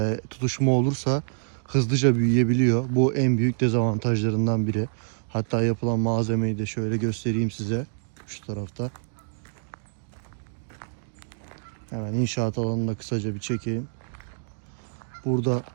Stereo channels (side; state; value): left; silent; digital silence